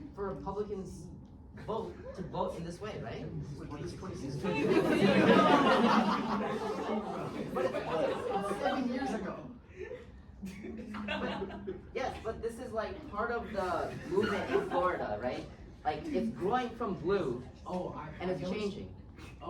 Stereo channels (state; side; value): identical; both; correlation 1.00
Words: for Republicans to vote in this way, right? 7 years ago. Yes, but this is like part of the movement in Florida, right? Like it's growing from blue, and it's changing.